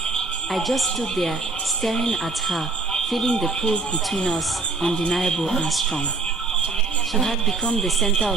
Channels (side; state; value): left; quieter; 3.7 dB